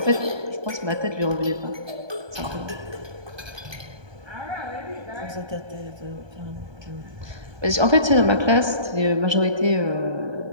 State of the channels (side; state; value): left; late; 1.2 ms